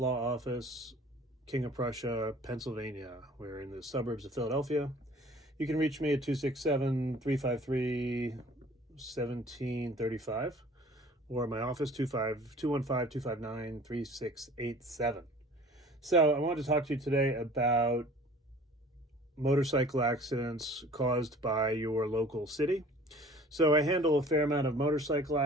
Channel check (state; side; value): normal; both; correlation 0.48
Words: Law Office, King of Prussia, Pennsylvania. We're in the suburbs of Philadelphia. You can reach me at 267-353-1735 or my office, 215-259-3687. So I wanted to talk to you today about motorcycle accidents caused by your local city. So I handle a fair amount of motorcycle